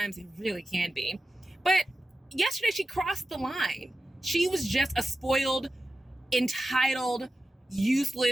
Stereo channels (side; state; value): both; normal; correlation 0.93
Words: It really can be. But yesterday she crossed the line. She was just a spoiled, entitled,